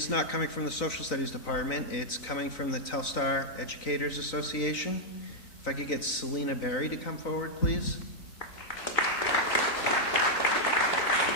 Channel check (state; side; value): late; right; 3.9 ms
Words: not coming from the Social Studies Department. It's coming from the Telstar Educators Association. If I could get Selena Berry to come forward, please.